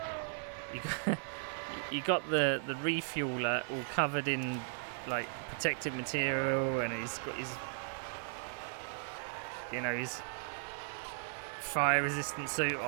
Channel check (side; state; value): left; silent; digital silence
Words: You got the refueler all covered in like protective material, and he's got his fire resistant suit